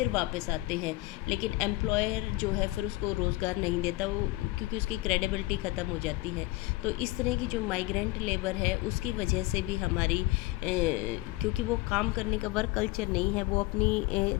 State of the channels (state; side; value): quieter; right; 20.1 dB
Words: वापस आते हैं, लेकिन एम्प्लॉयर जो है फिर उसको रोज़गार नहीं देता, वो क्योंकि उसकी क्रेडिबिलिटी ख़त्म हो जाती है। तो इस तरह की जो माइग्रेंट लेबर है उसकी वजह से भी हमारी क्योंकि वो काम करने का वर्क कल्चर नहीं है, वो अपनी